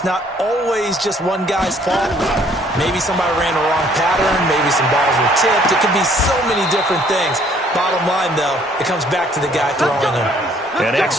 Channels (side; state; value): both; normal; correlation 0.62